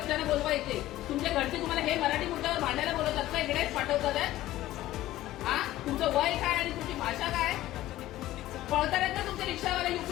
बोलवायचे. तुमच्या घरचे तुम्हाला हे मराठी मुद्द्यावर भांडायला बोलवतात का? इकडे पाठवतात. हा, तुमचं वय काय आणि तुमची भाषा काय? पळतात ना तुमचे रिक्षावाले,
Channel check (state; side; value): quieter; right; 15.3 dB